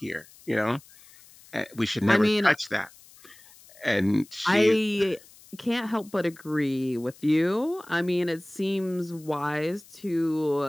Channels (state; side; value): noise; left; hiss, 24 dB below the sound